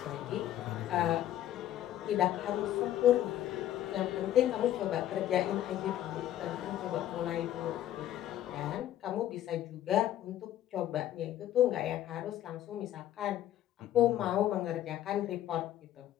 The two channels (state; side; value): quieter; right; 12.5 dB